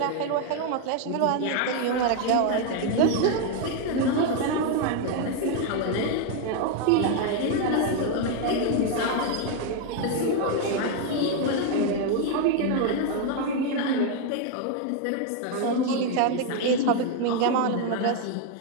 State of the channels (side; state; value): both; different; correlation 0.01